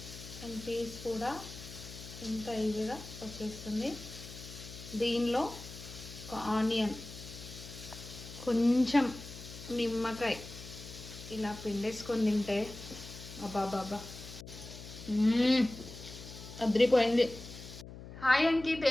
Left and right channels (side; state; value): left; noise; hum, 13 dB below the sound